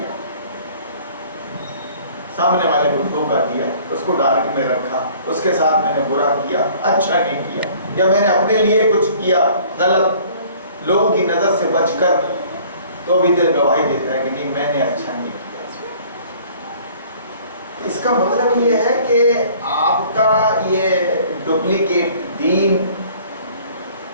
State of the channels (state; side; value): inverted; both; correlation -0.53